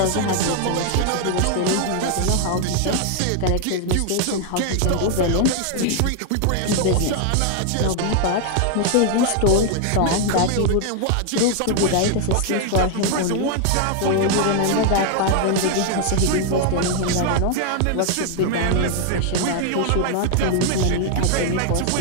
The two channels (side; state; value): both; different; correlation 0.00